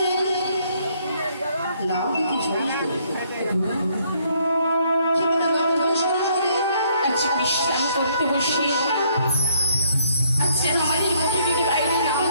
আজ বিশ্রাম করতে বসে আজ যেন আমাদের মুখে মুখে বাইরে নাম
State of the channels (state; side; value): inverted; both; correlation -0.68